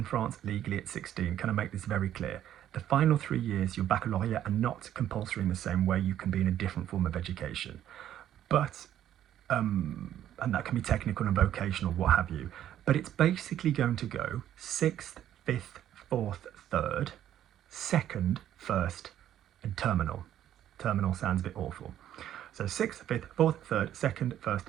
France legally at 16. Can I make this very clear? The final 3 years, your baccalaureate, are not compulsory in the same way. You can be in a different form of education. But, and that can be technical and vocational, what have you. But it's basically going to go 6th, 5th, 4th, 3rd, 2nd, 1st, and terminal. Terminal sounds a bit awful. So 6th, 5th, 4th, 3rd, 2nd,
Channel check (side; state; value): left; quieter; 11.3 dB